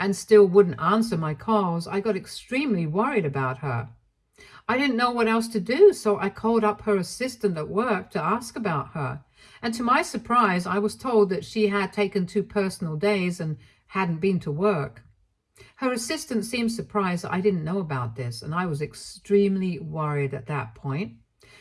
still wouldn't answer my calls, I got extremely worried about her. I didn't know what else to do, so I called up her assistant at work to ask about her. And to my surprise, I was told that she had taken 2 personal days and hadn't been to work. Her assistant seemed surprised that I didn't know about this, and I was extremely worried at that point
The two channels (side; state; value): both; identical; correlation 1.00